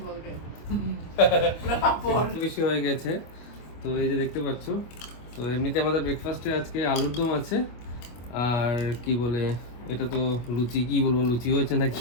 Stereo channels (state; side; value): late; right; 25 ms